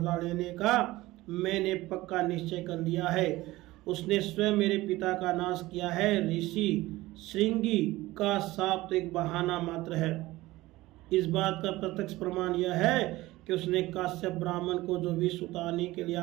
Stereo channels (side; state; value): left; quieter; 18.4 dB